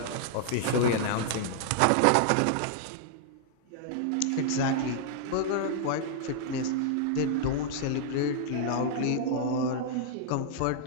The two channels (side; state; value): both; different; correlation -0.01